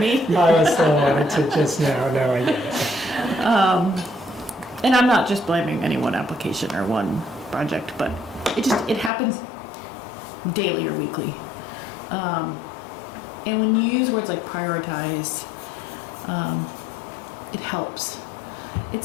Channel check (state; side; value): drops out; right; at 9.1 s